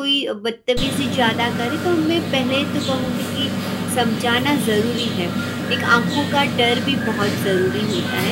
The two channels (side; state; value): both; identical; correlation 1.00